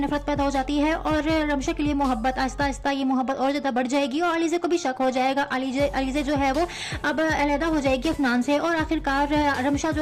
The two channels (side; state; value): both; identical; correlation 1.00